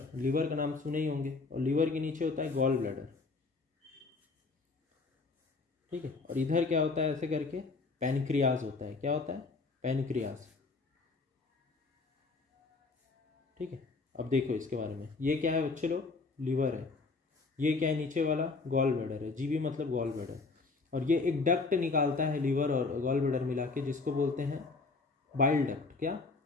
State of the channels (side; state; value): right; quieter; 3.9 dB